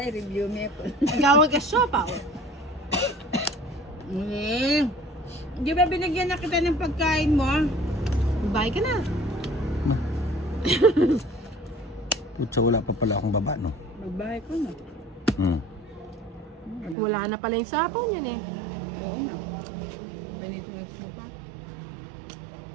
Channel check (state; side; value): drops out; left; at 16.9 s